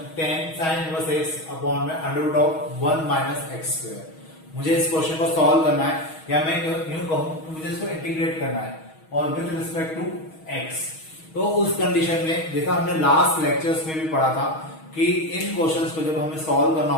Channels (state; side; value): late; right; 6.3 ms